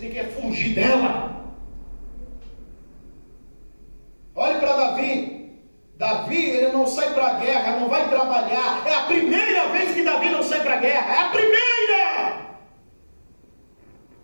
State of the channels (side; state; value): both; inverted; correlation -1.00